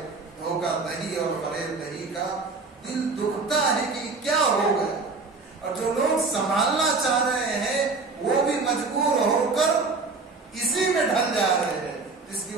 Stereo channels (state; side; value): quieter; left; 4.0 dB